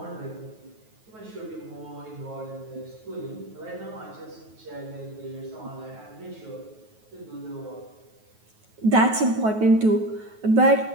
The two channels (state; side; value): late; left; 9.3 ms